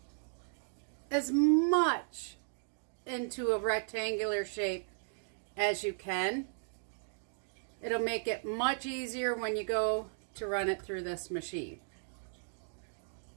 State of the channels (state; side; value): silent; left; digital silence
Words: as much into a rectangular shape as you can. It'll make it much easier when you go to run it through this machine.